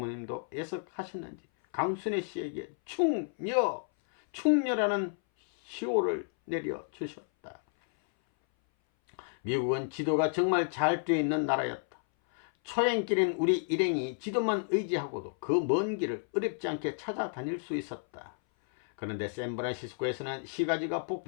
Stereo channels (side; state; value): right; silent; 57 dB below the other